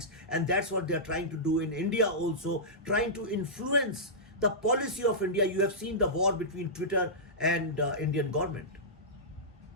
and that's what they're trying to do in India also, trying to influence the policy of India. You have seen the war between Twitter and Indian government.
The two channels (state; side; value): normal; both; correlation -0.15